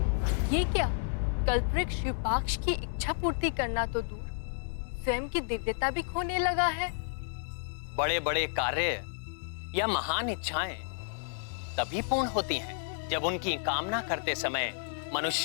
ये क्या? कल्प वृक्ष युपाक्ष की इच्छा पूर्ति करना तो दूर, स्वयं की दिव्यता भी खोने लगा है। बड़े बड़े कार्य या महान इच्छाएं तभी पूर्ण होती हैं जब उनकी कामना करते समय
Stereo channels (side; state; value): right; silent; digital silence